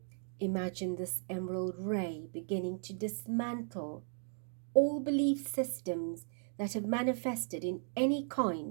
Imagine this emerald ray beginning to dismantle all belief systems that have manifested in any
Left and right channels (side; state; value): left; silent; 54 dB below the other